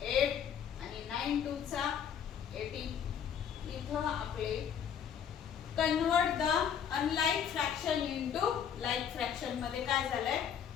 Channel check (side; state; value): right; quieter; 8.2 dB